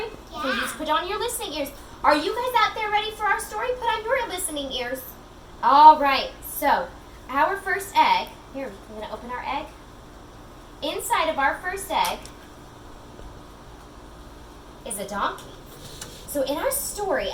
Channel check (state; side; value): identical; both; correlation 1.00